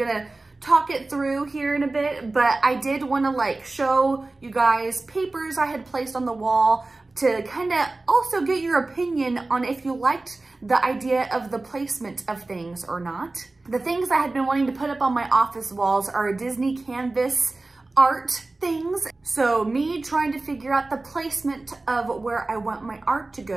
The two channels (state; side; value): quieter; left; 3.2 dB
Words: talk it through here in a bit, but I did want to like show you guys papers I had placed on the wall to kind of also get your opinion on if you liked the idea of the placement of things or not. The things I had been wanting to put up on my office walls are Disney canvas art things. So me trying to figure out the placement of where I want my art to